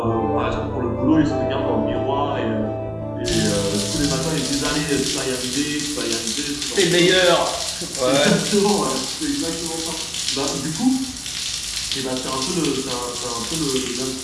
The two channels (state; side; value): identical; both; correlation 1.00